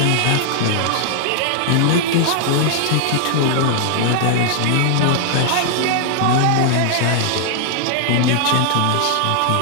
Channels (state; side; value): different; both; correlation -0.01